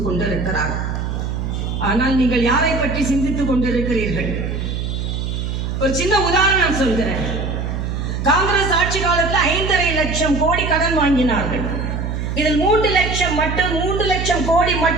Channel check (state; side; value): noise; right; hum, 3 dB below the sound